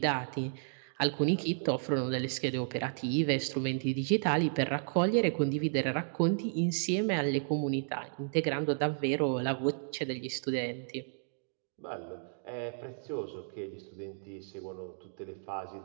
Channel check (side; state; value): left; silent; digital silence